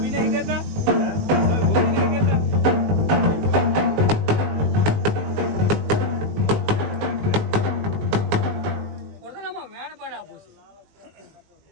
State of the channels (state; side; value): late; left; 20 ms